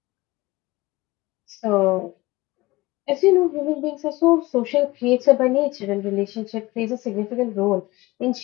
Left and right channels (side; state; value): right; quieter; 20.5 dB